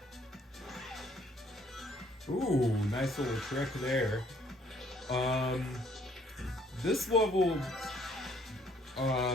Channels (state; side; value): normal; both; correlation 0.63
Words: Ooh, nice little trick there. This level,